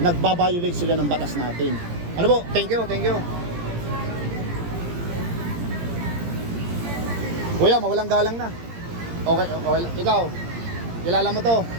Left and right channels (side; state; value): left; late; 17 ms